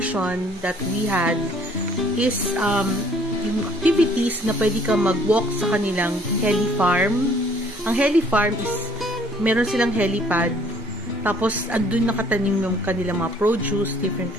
that we had is yung activities na pwede ka mag-walk sa kanilang heli farm. Ang heli farm is Meron silang helipad. Tapos, andun nakatanim yung kanilang mga produce, different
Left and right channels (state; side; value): normal; both; correlation 0.59